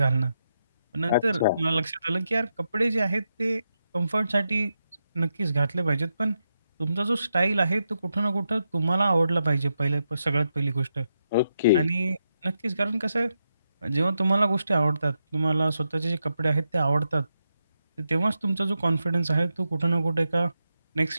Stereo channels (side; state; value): both; inverted; correlation -0.85